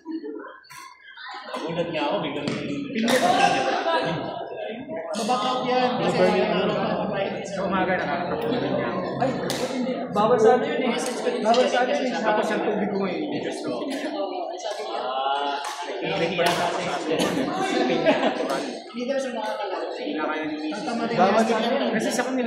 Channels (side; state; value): both; identical; correlation 1.00